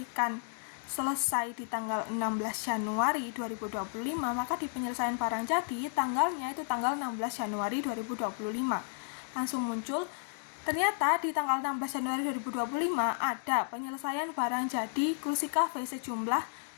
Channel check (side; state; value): right; silent; digital silence